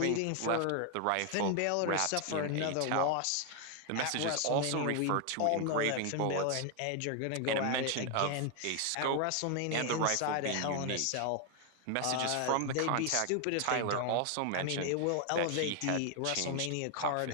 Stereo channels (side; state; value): both; different; correlation 0.00